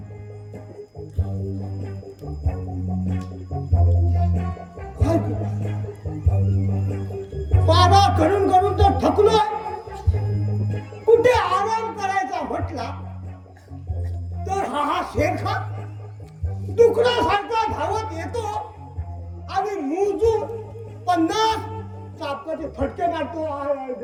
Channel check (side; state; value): both; identical; correlation 1.00